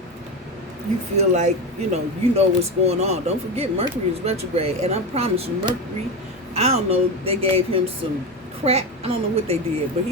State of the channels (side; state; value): both; normal; correlation 0.18